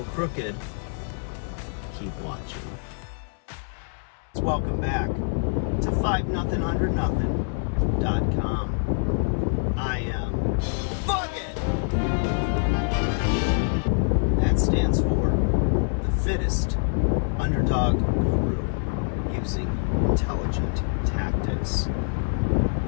crooked, keep watching. Welcome back to 5nothing100nothing.com. I am Fuck It! That stands for the fittest underdog guru using intelligent tactics.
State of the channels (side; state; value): right; silent; 61 dB below the other